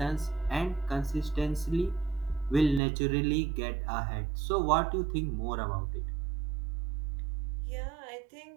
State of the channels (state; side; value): drops out; left; at 2.8 s